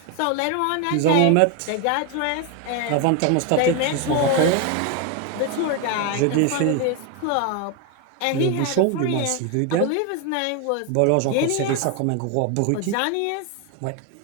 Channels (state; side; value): different; both; correlation 0.01